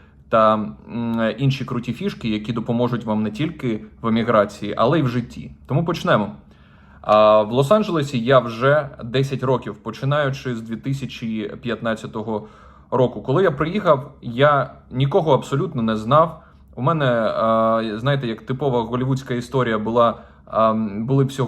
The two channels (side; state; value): both; identical; correlation 1.00